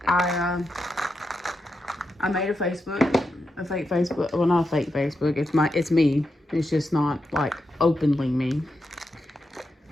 I made a fake Facebook. Well, not a fake Facebook. It's me. It's just not like openly me.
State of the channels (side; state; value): both; normal; correlation 0.86